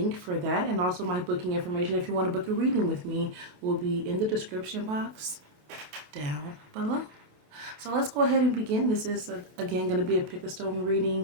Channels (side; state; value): left; late; 28 ms